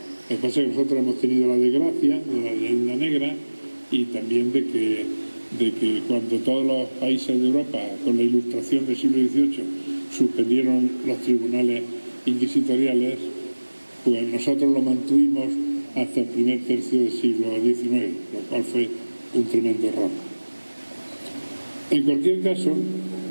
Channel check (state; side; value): inverted; both; correlation -1.00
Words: Lo que pasa es que nosotros hemos tenido la desgracia de la leyenda negra y también de que cuando todos los países de Europa, con la Ilustración del siglo XVIII, suspendieron los tribunales inquisitoriales, pues nosotros lo mantuvimos hasta el primer tercio del siglo XIX, lo cual fue un tremendo error. En cualquier caso,